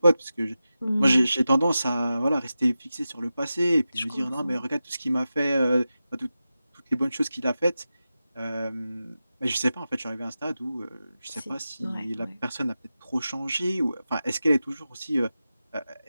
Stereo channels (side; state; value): both; inverted; correlation -0.93